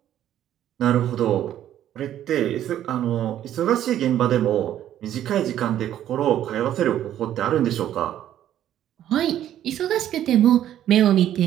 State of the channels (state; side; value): quieter; left; 11.5 dB